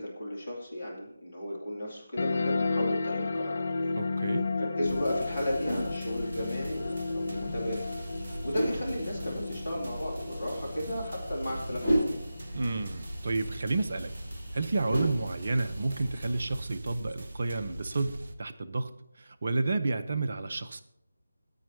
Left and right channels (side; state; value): both; inverted; correlation -0.91